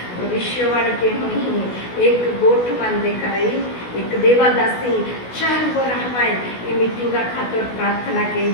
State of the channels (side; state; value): right; late; 16 ms